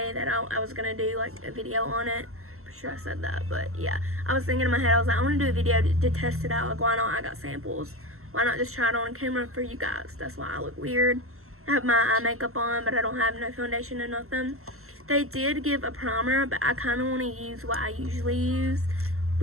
that I was going to do like a video on it. Pretty sure I said that, but yeah. I was thinking in my head, I was like, I want to do a video to test it out. Like, why not? I got samples. Why not just try it on camera for you guys? That's why I look weird. I have my eye makeup on, but I don't have no foundation or nothing. They did give a primer, but I kind of want to use what I usually use,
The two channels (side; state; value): left; late; 0.63 ms